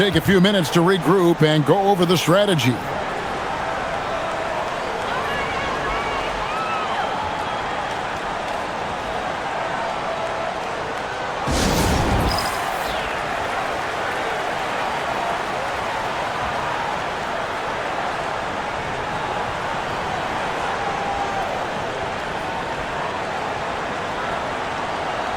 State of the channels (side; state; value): both; identical; correlation 1.00